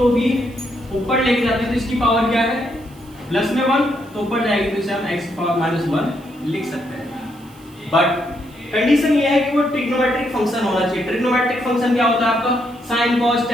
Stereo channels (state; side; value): noise; right; hiss, 27 dB below the sound